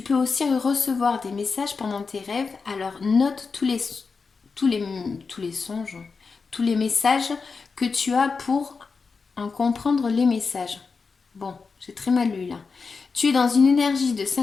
peux aussi recevoir des messages pendant tes rêves, alors note tous les songes, tous les messages que tu as pour en comprendre les messages. Bon, j'ai très mal lu là. Tu es dans une énergie de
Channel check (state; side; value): quieter; right; 4.8 dB